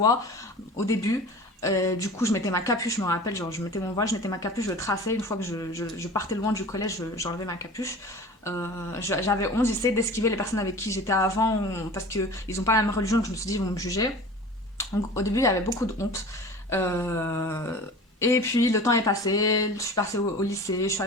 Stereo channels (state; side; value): normal; both; correlation 0.38